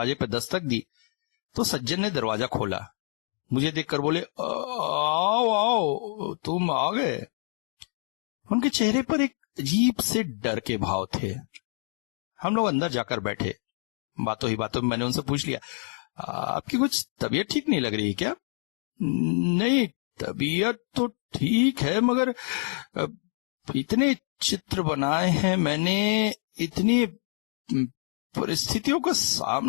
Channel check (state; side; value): silent; right; 56 dB below the other